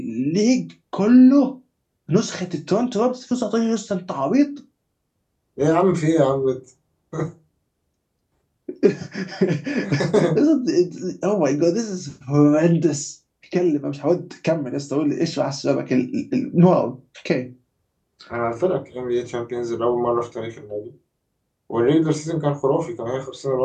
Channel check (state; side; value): identical; both; correlation 1.00